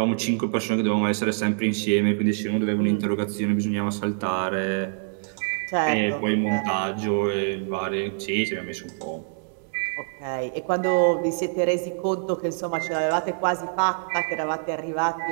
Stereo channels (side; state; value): left; silent; digital silence